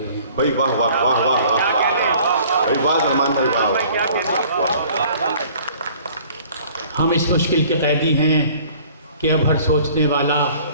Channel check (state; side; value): inverted; both; correlation -0.52